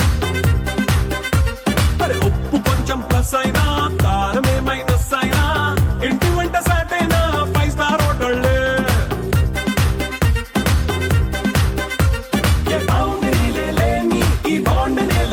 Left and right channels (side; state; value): both; identical; correlation 1.00